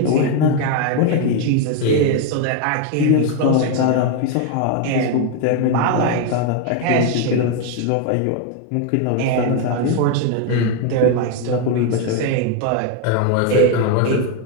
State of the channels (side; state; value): both; different; correlation 0.01